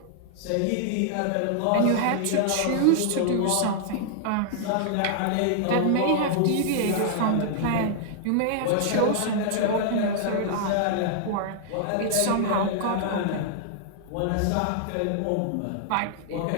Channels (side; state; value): both; different; correlation -0.01